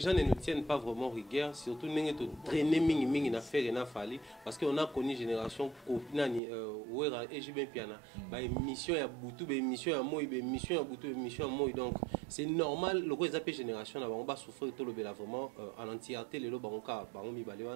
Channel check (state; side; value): drops out; left; at 6.4 s